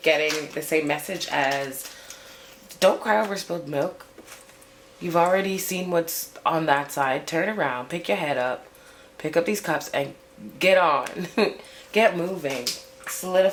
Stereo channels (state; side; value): identical; both; correlation 1.00